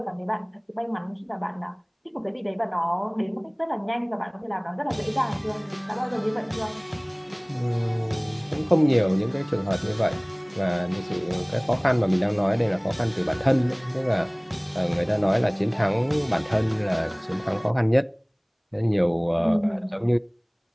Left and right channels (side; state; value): both; identical; correlation 1.00